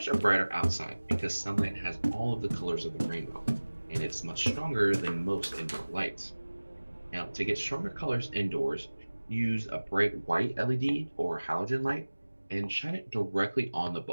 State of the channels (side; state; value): both; inverted; correlation -1.00